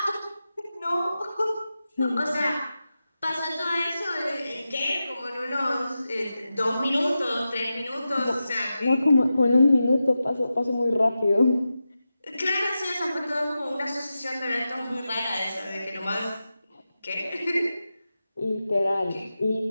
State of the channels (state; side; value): inverted; both; correlation -0.92